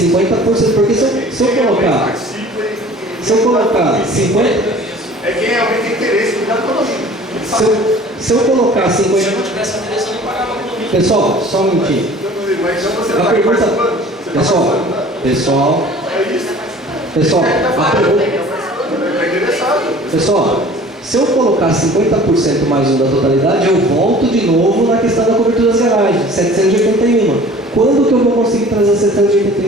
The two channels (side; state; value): both; normal; correlation 0.47